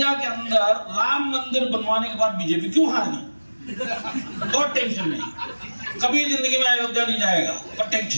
के अंदर राम मंदिर बनवाने के बाद बीजेपी क्यों हार गई? बहुत टेंशन में, कभी जिंदगी में अयोध्या नहीं जाएगा, पर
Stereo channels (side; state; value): both; inverted; correlation -1.00